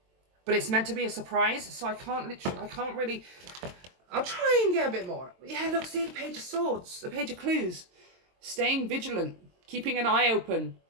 but it's meant to be a surprise, so I can't really... I'll try and get a bit more. Yeah, look, see the Page of Swords, the Page of Clues. Staying vigilant, keeping an eye open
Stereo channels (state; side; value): late; left; 22 ms